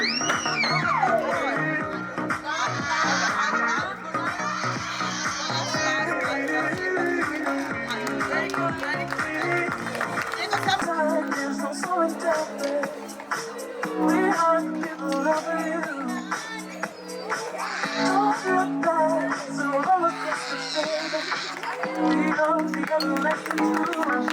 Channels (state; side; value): identical; both; correlation 1.00